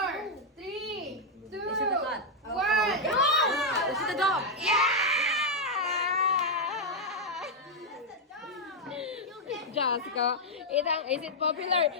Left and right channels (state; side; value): normal; both; correlation -0.02